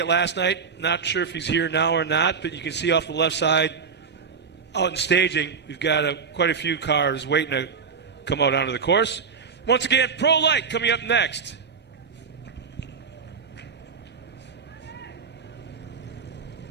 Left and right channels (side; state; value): left; quieter; 5.9 dB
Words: last night. Not sure if he's here now or not, but you can see off the left side out in staging, we've got quite a few cars waiting to come out onto the course. Once again, Pro Light coming up next.